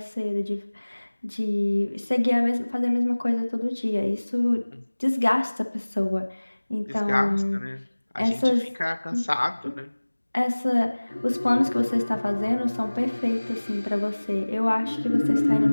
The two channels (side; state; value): both; inverted; correlation -1.00